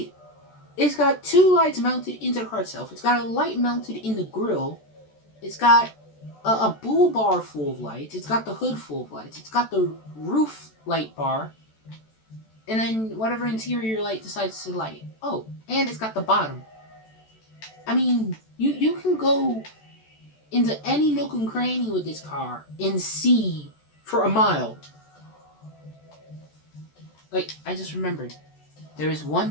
It's got 2 lights mounted into the car itself. It's got a light mounted in the grill. It's got a bull bar full of lights. It's got the hood full of lights. It's got the roof light bar. And then whatever interior light decides to light. Oh, and it's got the bottom. I mean, you can go into any nook and cranny with this car and see for a mile. Like, I just remembered. There is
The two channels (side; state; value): right; late; 14 ms